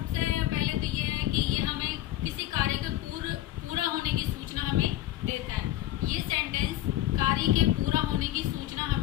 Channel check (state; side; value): quieter; right; 14.6 dB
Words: पहले तो ये है कि ये हमें किसी कार्य के पूरा होने की सूचना हमें देता है। ये सेंटेंस कार्य के पूरा होने की सूचना